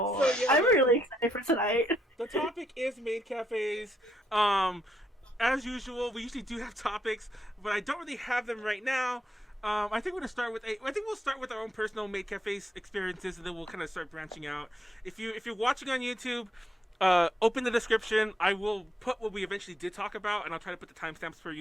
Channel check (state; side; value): normal; both; correlation 0.76